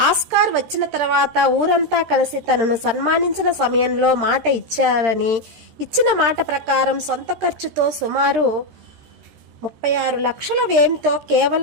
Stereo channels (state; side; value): late; left; 13 ms